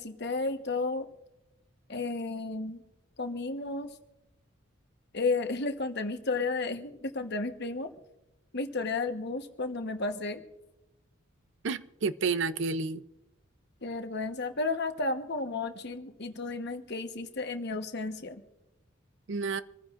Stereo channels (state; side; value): normal; both; correlation 0.06